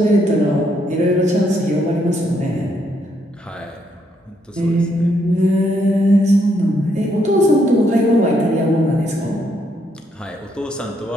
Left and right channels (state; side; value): normal; both; correlation 0.74